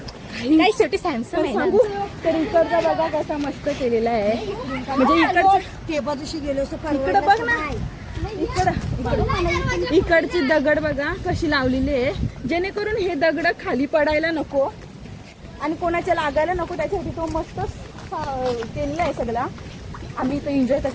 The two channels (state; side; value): identical; both; correlation 1.00